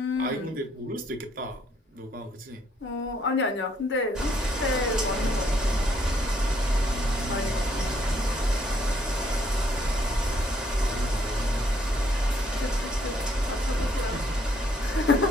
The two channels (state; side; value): normal; both; correlation 0.69